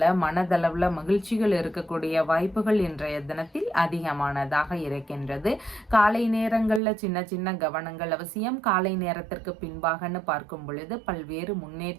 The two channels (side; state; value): left; drops out; at 6.8 s